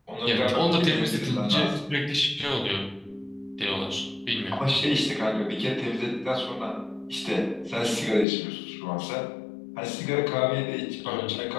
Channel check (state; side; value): drops out; right; at 8.2 s